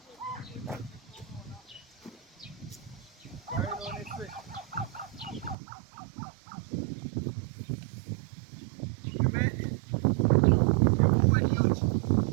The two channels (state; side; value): drops out; left; at 5.6 s